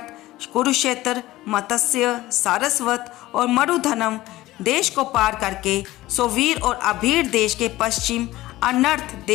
कुरुक्षेत्र, मत्स्य, सारस्वत और मरुधनम देश को पार करके सोवीर और अभीर देश के पश्चिम अनर्थ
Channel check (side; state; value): right; quieter; 17.1 dB